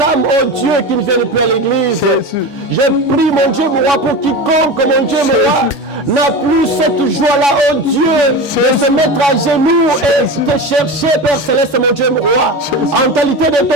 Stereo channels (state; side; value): normal; both; correlation 0.27